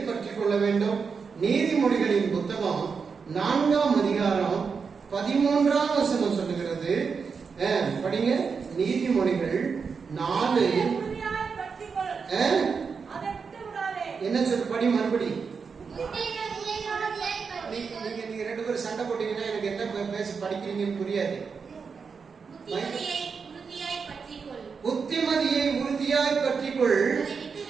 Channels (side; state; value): left; quieter; 5.5 dB